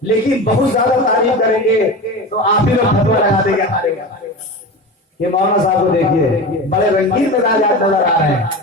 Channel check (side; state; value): both; normal; correlation 0.28